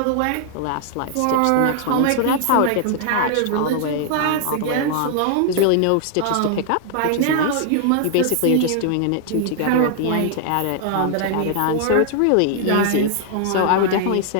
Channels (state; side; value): different; both; correlation 0.00